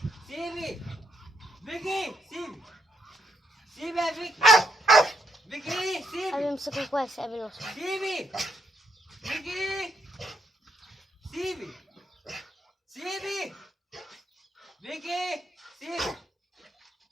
سيبي فيكي سيبي سيبي يا فيكي فيكي سيبي أبي أمسكه كويس قبل ما أوصل. سيبي فيكي سيبي سيبي فيكي سيبي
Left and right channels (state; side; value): normal; both; correlation 0.75